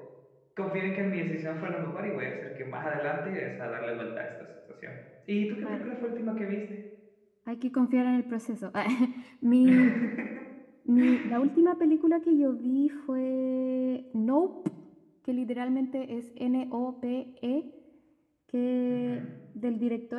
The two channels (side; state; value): both; identical; correlation 1.00